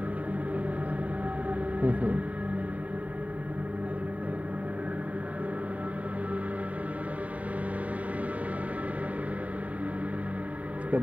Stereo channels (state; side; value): late; left; 0.069 ms